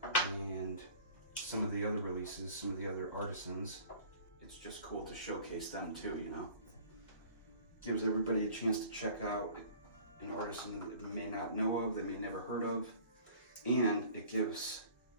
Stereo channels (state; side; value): inverted; both; correlation -0.47